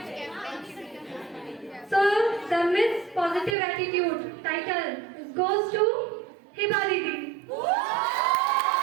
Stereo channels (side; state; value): left; drops out; at 3.6 s